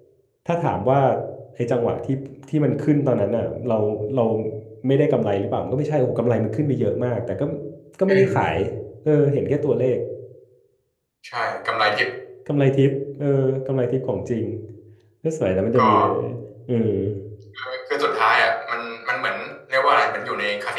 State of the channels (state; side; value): identical; both; correlation 1.00